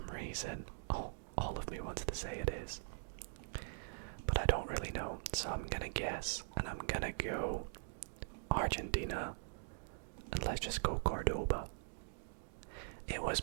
reason. Oh, all of me wants to say it is. But I don't really know, so I'm gonna guess, and I'm gonna go Argentina, and let's just go Cordoba. It was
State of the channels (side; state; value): left; silent; digital silence